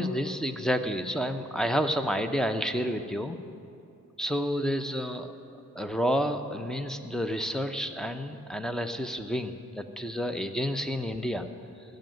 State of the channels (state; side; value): normal; both; correlation 0.77